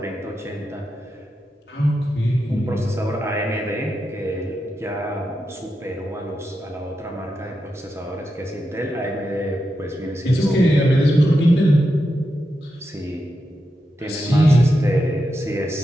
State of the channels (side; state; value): both; normal; correlation 0.87